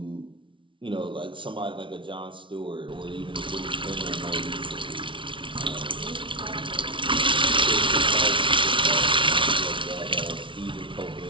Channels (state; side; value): late; left; 0.25 ms